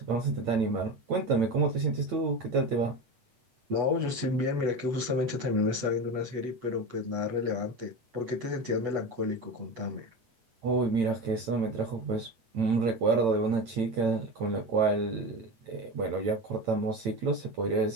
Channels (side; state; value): left; late; 8.2 ms